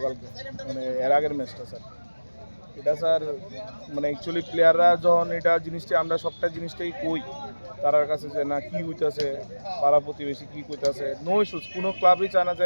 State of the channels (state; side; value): inverted; both; correlation -1.00